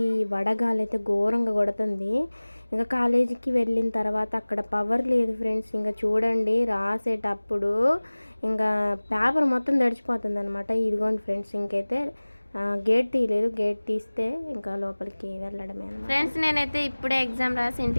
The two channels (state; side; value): inverted; both; correlation -1.00